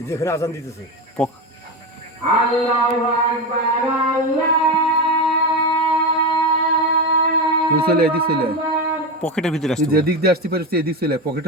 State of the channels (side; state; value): both; normal; correlation 0.17